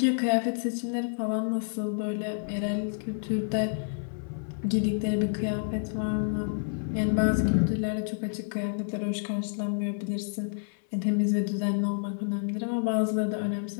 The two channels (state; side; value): silent; right; 59 dB below the other